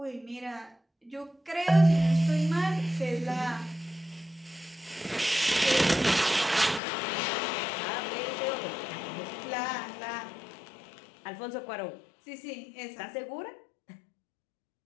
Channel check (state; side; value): drops out; right; at 6.8 s